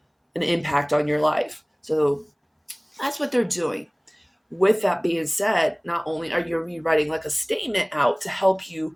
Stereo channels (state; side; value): identical; both; correlation 1.00